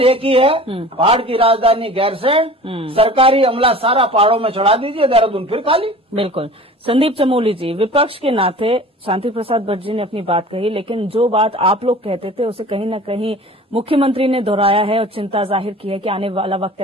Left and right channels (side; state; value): both; normal; correlation 0.42